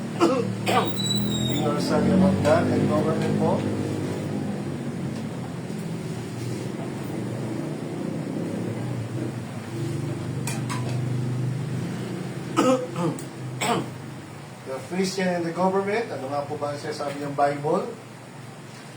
Continue our study about God and government po. The Christian and the government, ano nga po ba siya sabi ng Bible?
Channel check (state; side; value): identical; both; correlation 1.00